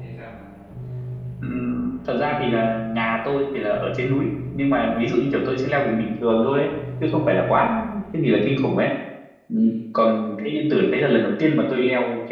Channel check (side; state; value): both; identical; correlation 1.00